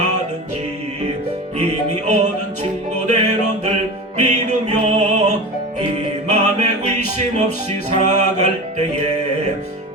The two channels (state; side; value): normal; both; correlation 0.30